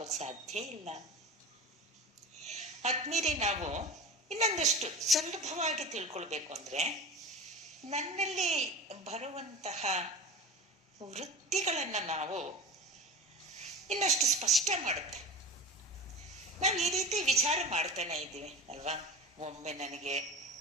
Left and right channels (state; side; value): normal; both; correlation 0.31